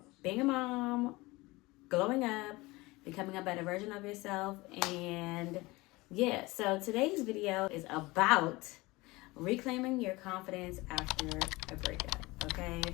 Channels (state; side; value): quieter; right; 21.9 dB